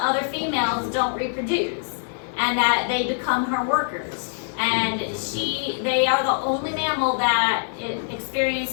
females don't reproduce and that they become her workers. And they are the only mammal that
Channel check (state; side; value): silent; right; digital silence